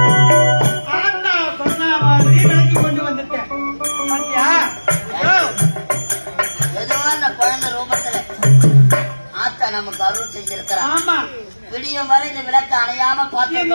நமக்கு அருள் செஞ்சிருக்கிறார். விடியும் வரை இந்த விளக்கு அணையாம பார்த்து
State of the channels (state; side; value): inverted; both; correlation -1.00